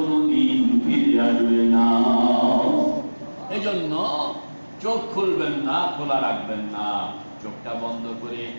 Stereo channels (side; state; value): both; inverted; correlation -1.00